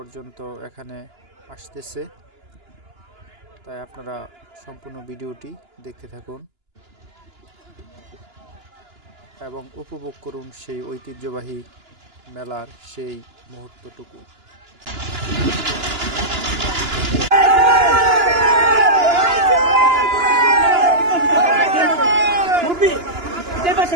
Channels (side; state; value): left; late; 2.9 ms